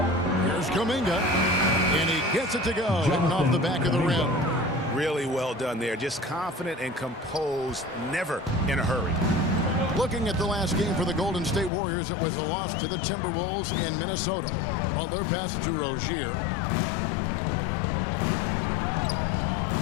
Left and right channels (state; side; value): drops out; right; at 11.7 s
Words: Here's Kuminga. And he gets it to go. Hitting off the back of the rim. Really well done there. Just confident and composed, never in a hurry. Looking at the last game for the Golden State Warriors, it was a loss to the Timberwolves in Minnesota. Butler passes to Rozier.